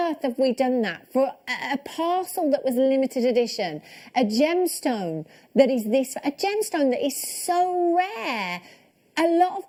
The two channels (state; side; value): identical; both; correlation 1.00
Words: have we done that for a parcel that was limited edition? A gemstone that is a gemstone that is so rare. A lot